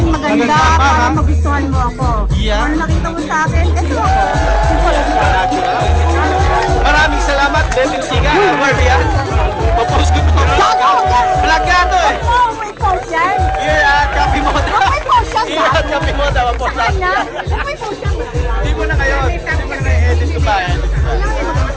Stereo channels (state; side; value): identical; both; correlation 1.00